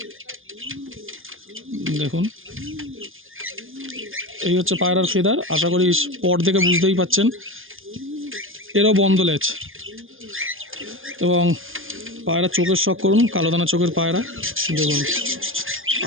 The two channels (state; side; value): late; left; 0.59 ms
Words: দেখুন এই হচ্ছে পায়রার ফেদার, আশা করি পর দেখে বুঝতেই পাচ্ছেন। এরও বন্ধ লেজ এবং পায়রা চোখের শক করুন, কালো দানা চোখের পায়রা, দেখুন